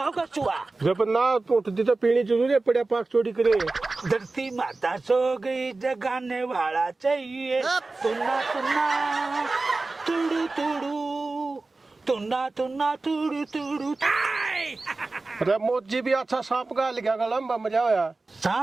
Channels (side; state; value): left; quieter; 3.5 dB